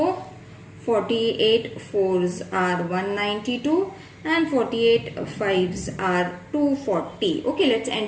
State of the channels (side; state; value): both; identical; correlation 1.00